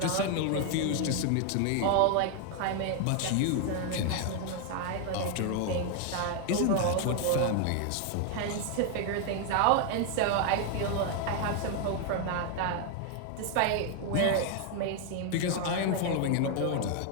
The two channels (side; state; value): both; different; correlation 0.00